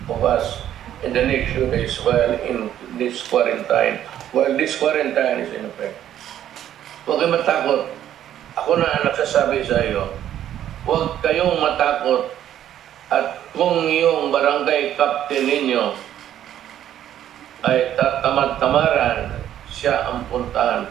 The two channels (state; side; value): quieter; left; 11.2 dB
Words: of us in the next few days while in this quarantine, is in effect. Huwag kayong matakot. Ako na ang nagsasabi sa iyo, huwag kayong matakot at kung yung barangay captain ninyo ay tatamad-tamaran, siya ang puntahan